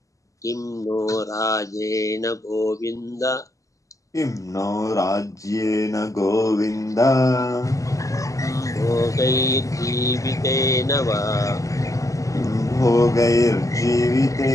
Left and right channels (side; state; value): right; late; 0.16 ms